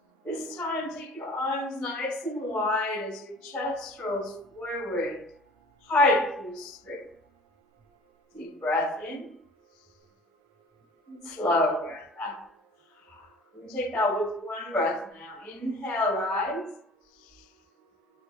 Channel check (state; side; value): normal; both; correlation 0.45